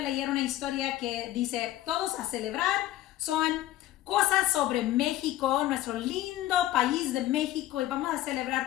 una historia que dice, todos a celebrar, son cosas sobre México, nuestro lindo país de México, y vamos a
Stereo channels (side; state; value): right; quieter; 14.3 dB